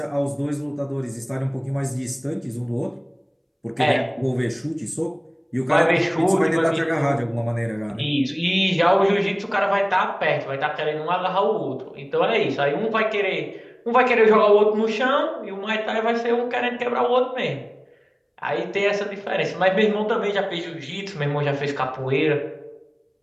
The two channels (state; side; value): identical; both; correlation 1.00